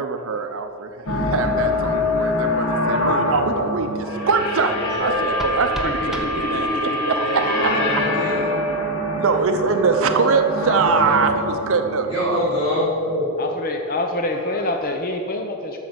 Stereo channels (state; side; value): normal; both; correlation 0.01